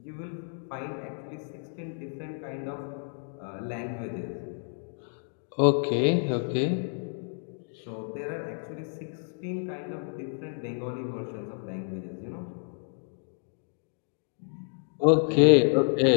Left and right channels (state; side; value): silent; right; digital silence